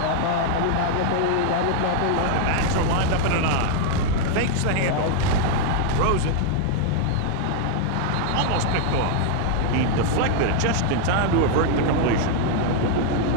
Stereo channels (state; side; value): different; both; correlation 0.00